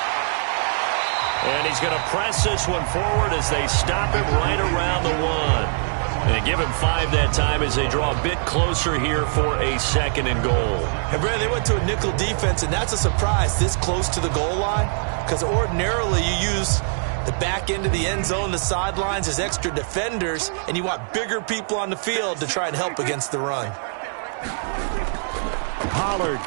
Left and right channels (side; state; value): left; silent; digital silence